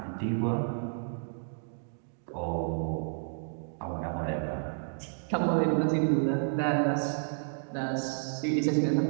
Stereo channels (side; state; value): left; silent; digital silence